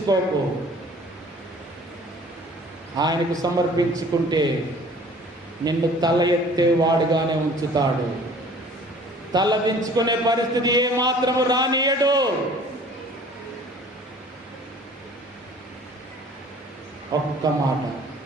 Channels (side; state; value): both; normal; correlation 0.50